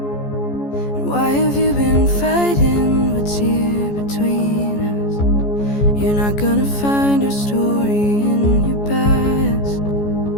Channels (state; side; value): late; right; 14 ms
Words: And why have you been fighting what's here between us? You're not gonna find our story in your past.